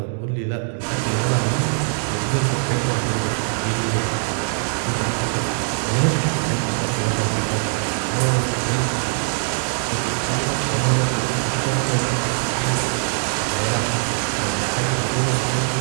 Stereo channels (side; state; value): left; silent; 64 dB below the other